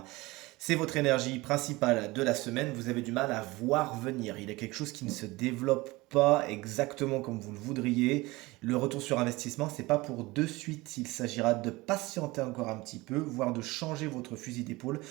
C'est votre énergie principale de la semaine, vous avez du mal à voir venir, il y a quelque chose qui ne se développe pas exactement comme vous le voudriez. Le retour sur investissement, c'est pas pour de suite, il s'agira de patienter encore un petit peu, voire de changer votre fusil d'épaule.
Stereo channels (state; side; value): quieter; left; 21.5 dB